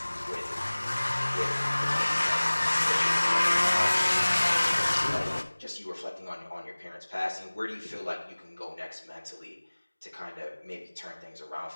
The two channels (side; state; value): both; inverted; correlation -1.00